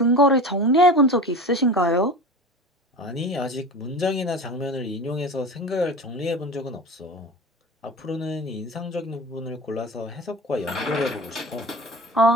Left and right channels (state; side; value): normal; both; correlation 0.33